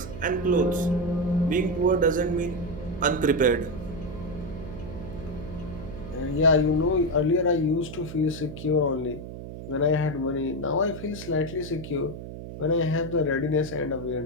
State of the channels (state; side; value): noise; right; hum, 10 dB below the sound